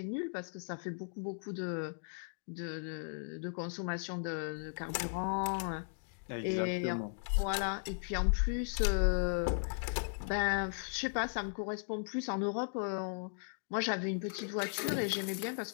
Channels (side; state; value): right; silent; digital silence